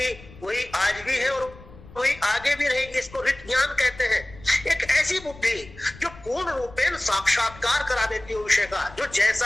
वही आज भी है और वही आगे भी रहेगी। इसको ऋत ज्ञान कहते हैं। एक ऐसी बुद्धि जो पूर्ण रूपेण साक्षात्कार करा देती है विषय का, जो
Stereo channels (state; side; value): noise; left; rumble, 19 dB below the sound